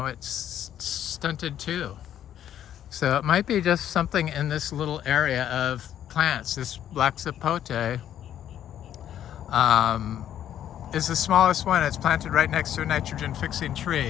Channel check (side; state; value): right; quieter; 10.7 dB